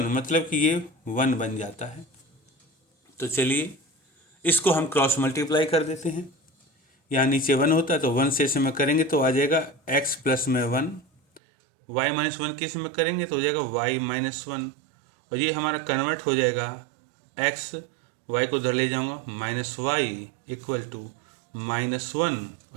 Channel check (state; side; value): drops out; left; at 11.4 s